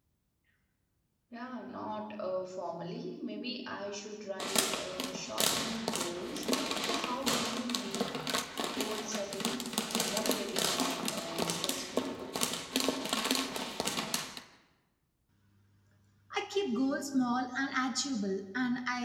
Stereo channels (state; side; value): identical; both; correlation 1.00